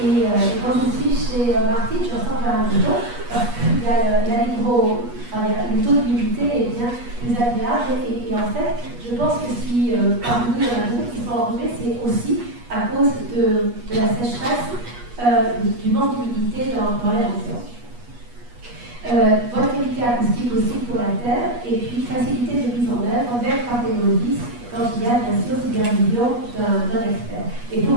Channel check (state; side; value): late; left; 8.3 ms